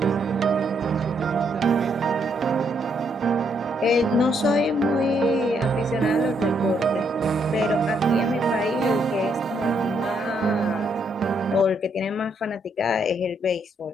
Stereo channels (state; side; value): normal; both; correlation 0.74